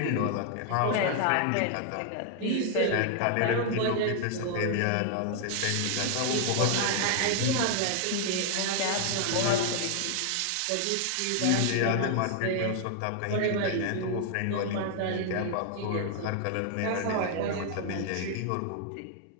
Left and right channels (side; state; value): both; different; correlation 0.00